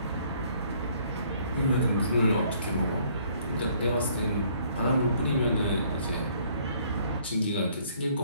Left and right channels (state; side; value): inverted; both; correlation -0.62